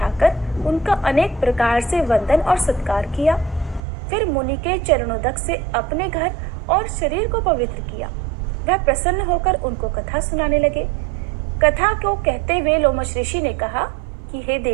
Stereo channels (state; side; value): drops out; left; at 3.8 s